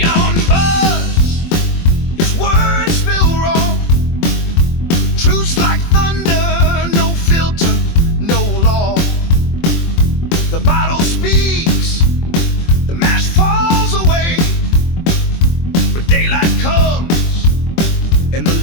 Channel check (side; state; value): right; late; 24 ms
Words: buzz, his words feel raw. Truths like thunder, no filter, no law. The bottle speaks, the mask falls away, but daylight comes and the